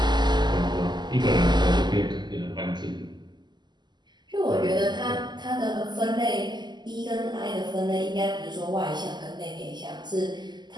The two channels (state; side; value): late; left; 0.21 ms